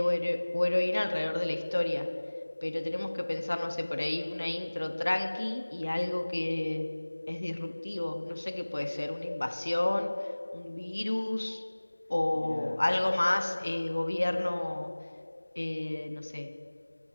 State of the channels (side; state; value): both; inverted; correlation -1.00